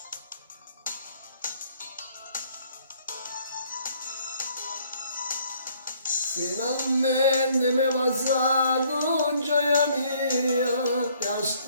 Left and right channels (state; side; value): inverted; both; correlation -0.63